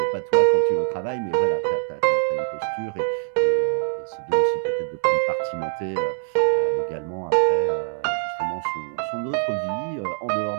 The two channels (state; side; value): silent; left; 60 dB below the other